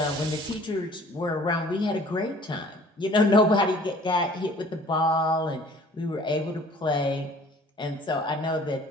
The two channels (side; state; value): both; normal; correlation 0.52